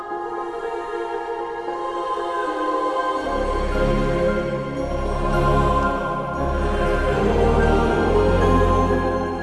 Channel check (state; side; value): identical; both; correlation 1.00